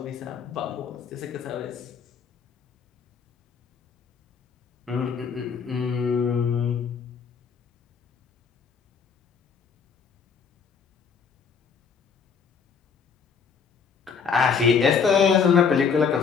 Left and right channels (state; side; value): quieter; right; 6.3 dB